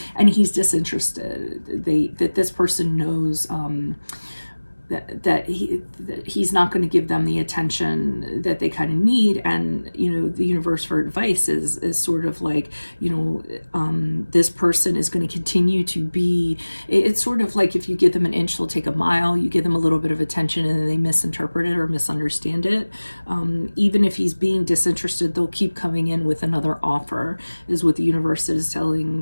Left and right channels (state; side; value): inverted; both; correlation -1.00